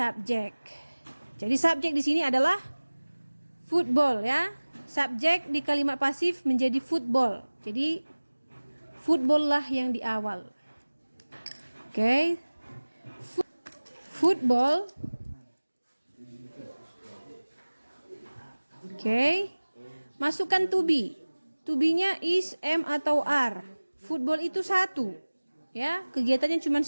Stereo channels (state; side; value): inverted; both; correlation -1.00